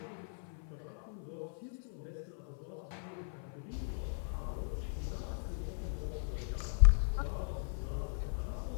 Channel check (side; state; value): right; silent; 52 dB below the other